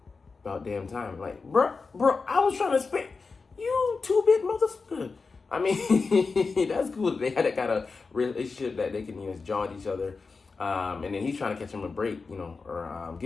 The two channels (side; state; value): right; quieter; 4.4 dB